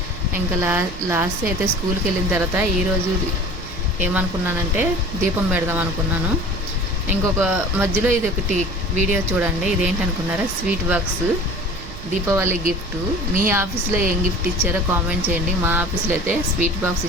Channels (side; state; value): right; noise; rumble, 15 dB below the sound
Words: ఇంకా లాస్ట్ అయితే స్కూల్కి వెళ్ళిన తర్వాత ఈరోజు ఏమనుకున్నానంటే దీపం పెడదాం అనుకున్నాను. ఇంకొక మధ్యలో ఇది ఒకటి వీడియో చూడండి. ఇదేంటి అనుకున్నారా? Sweet box Deepavali gift. మీ ఆఫీస్లో ఏం గిఫ్ట్ ఇచ్చారో కామెంట్ చేయండి. మా ఆఫీస్లో అయితే స్వీట్ బాక్స్